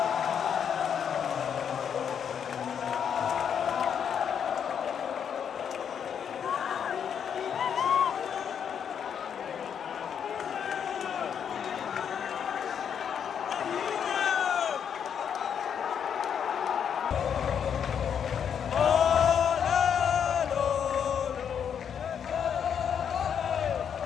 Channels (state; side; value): quieter; right; 7.9 dB